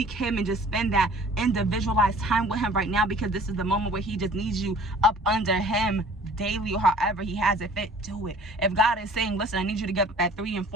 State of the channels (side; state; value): both; normal; correlation 0.50